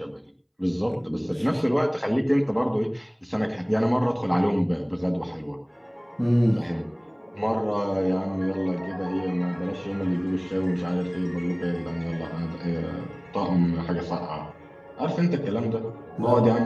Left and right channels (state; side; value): identical; both; correlation 1.00